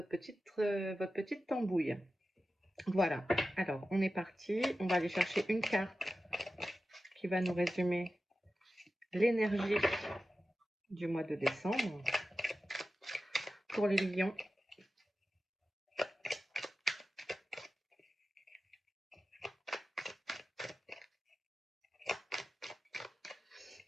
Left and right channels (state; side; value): normal; both; correlation 0.93